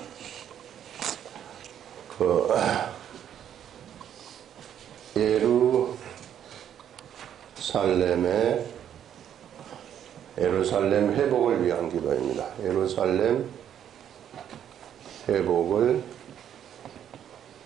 예루살렘 회복을 위한 기도입니다. 예루살렘 회복을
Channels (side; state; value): left; quieter; 9.8 dB